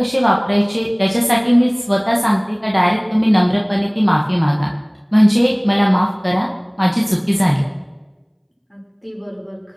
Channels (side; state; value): both; identical; correlation 1.00